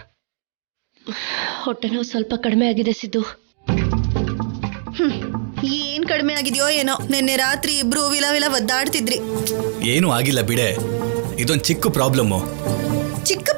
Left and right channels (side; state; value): left; silent; digital silence